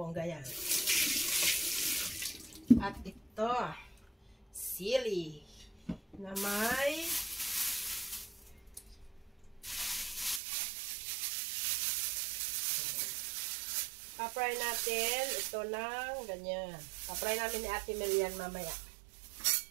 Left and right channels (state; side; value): drops out; left; at 10.4 s